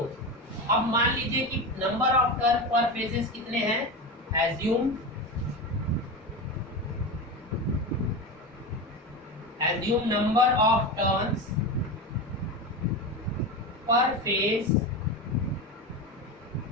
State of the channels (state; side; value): normal; both; correlation 0.21